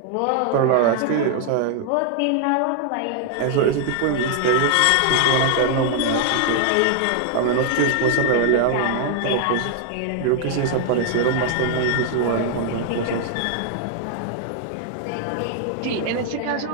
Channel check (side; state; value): both; different; correlation 0.00